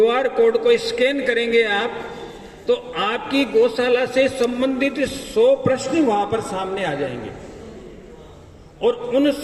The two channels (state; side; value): identical; both; correlation 1.00